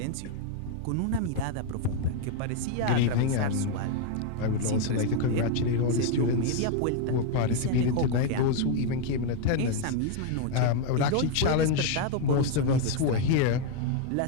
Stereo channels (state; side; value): different; both; correlation 0.00